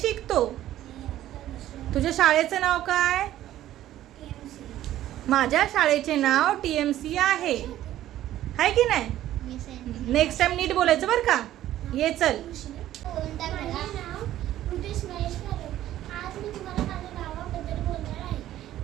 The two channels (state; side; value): quieter; left; 13.3 dB